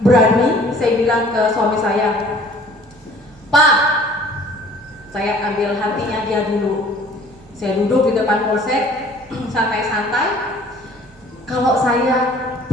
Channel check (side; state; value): both; normal; correlation 0.52